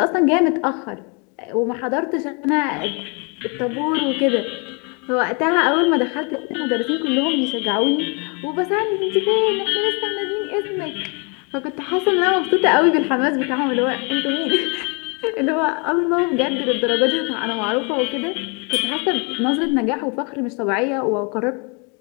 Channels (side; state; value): right; quieter; 34.0 dB